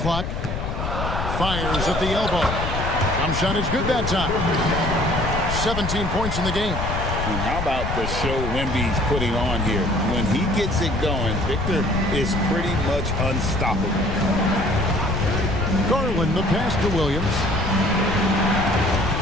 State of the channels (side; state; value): left; noise; rumble, 3 dB below the sound